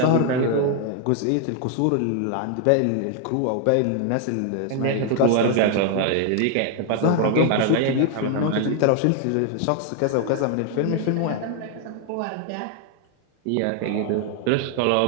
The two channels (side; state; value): both; different; correlation 0.00